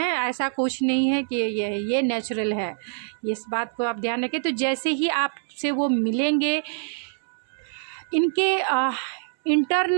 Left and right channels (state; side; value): silent; left; 62 dB below the other